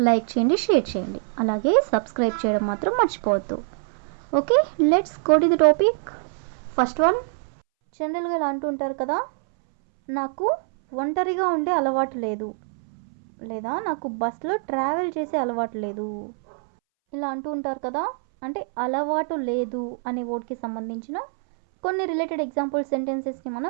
లైక్ చేయండి, షేర్ చేయండి, అలాగే సబ్స్క్రైబ్ చేయడం మాత్రం మర్చిపోవద్దు. Okay, let's go to the topic. First one, జనరల్గా ఇలా అంటూ ఉంటారు కదా, నాకు ఒంటరిగా ఉండే అలవాటు లేదు, లేదా నాకు బస్లో ట్రావెల్ చేసే అలవాటు లేదు. ఇలా అంటూ ఉంటారు కదా, అంటే అలవాటు లేదు అనే వర్డ్కి సంబంధించిన కొన్ని రిలేటెడ్ ఎగ్జాంపుల్ సెంటెన్సెస్ని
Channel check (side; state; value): left; silent; 62 dB below the other